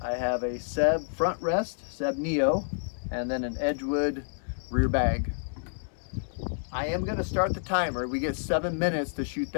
I have a Seb front rest, Seb Neo, and then an Edgewood rear bag. I am going to start the timer. We get 7 minutes to shoot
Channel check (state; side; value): silent; right; 59 dB below the other